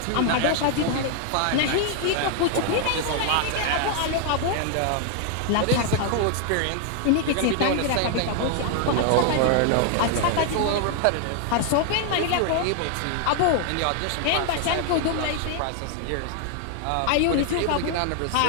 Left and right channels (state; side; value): different; both; correlation 0.00